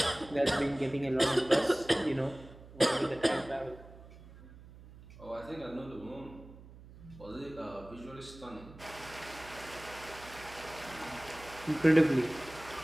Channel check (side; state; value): right; noise; hum, 19 dB below the sound